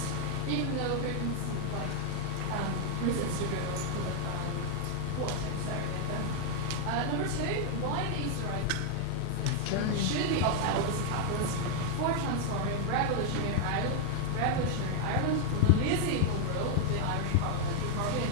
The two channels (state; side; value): different; both; correlation 0.00